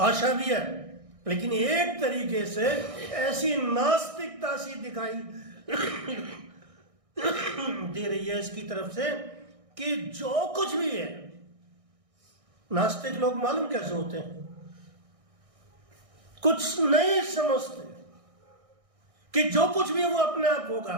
भी है, लेकिन एक तरीके से ऐसी नास्तिकता सी दिखाई दे रही है इसकी तरफ से कि जो कुछ भी है, नास्तिक लोग मालूम कैसे होते हैं, कुछ नहीं समझते कि जो कुछ भी है वो अपने आप होगा,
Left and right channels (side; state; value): left; late; 1.6 ms